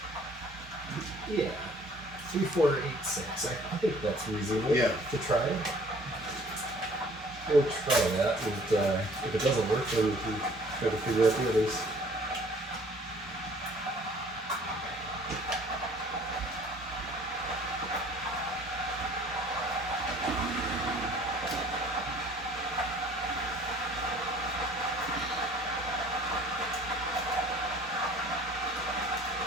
Yeah. 3, 4, 8, 6. I think that's reasonable Yeah. to try. We'll try that, and if it doesn't work, then we can try to figure out the others.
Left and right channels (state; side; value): normal; both; correlation 0.53